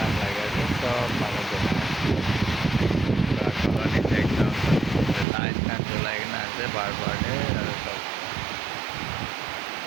লাগে আছে সব পানি জমে एकदम लाइट ना जलाई ना আছে बार-बार আর সব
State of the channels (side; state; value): left; drops out; at 5.2 s